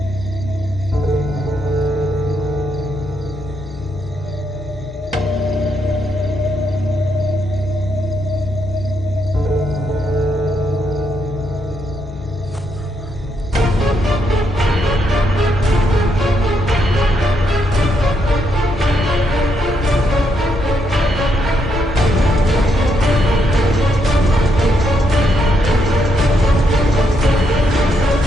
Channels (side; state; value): both; normal; correlation 0.77